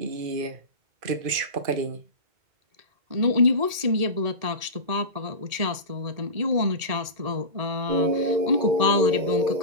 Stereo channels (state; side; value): late; left; 1.8 ms